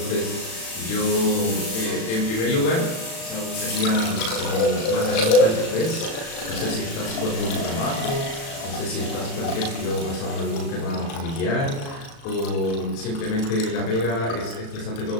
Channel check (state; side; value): late; right; 36 ms